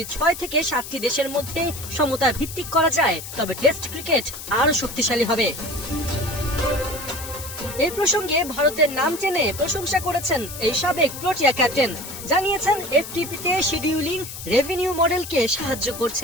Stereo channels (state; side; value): noise; left; hiss, 11 dB below the sound